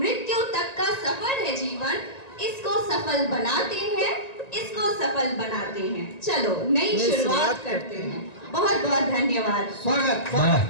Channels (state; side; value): late; right; 1.9 ms